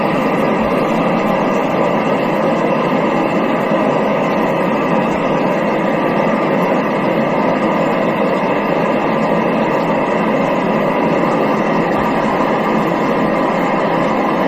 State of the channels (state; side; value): identical; both; correlation 1.00